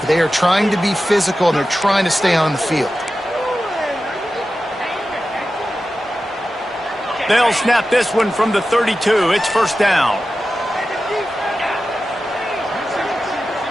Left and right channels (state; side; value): normal; both; correlation 0.93